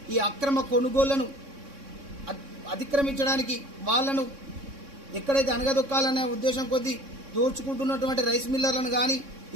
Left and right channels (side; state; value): left; late; 3.6 ms